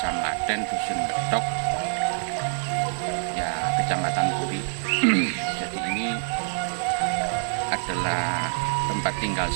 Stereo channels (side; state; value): left; silent; 61 dB below the other